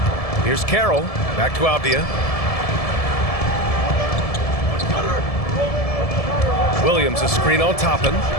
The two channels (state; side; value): late; right; 1.7 ms